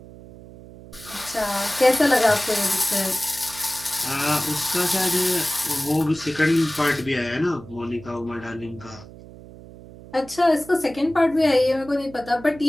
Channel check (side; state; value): right; noise; hum, 18 dB below the sound